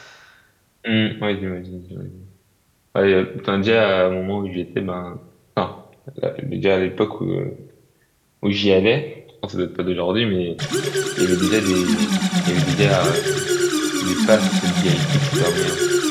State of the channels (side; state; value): both; identical; correlation 1.00